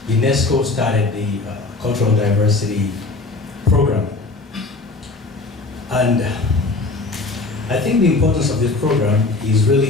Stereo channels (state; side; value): quieter; right; 3.5 dB